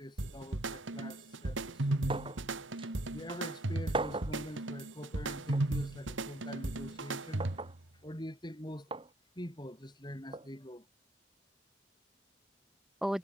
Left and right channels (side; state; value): both; normal; correlation 0.67